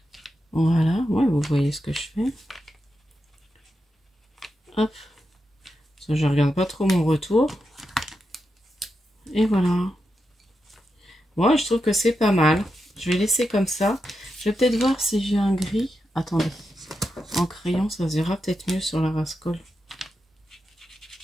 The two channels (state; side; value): normal; both; correlation 0.87